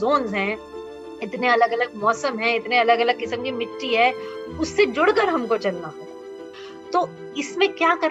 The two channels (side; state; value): both; identical; correlation 1.00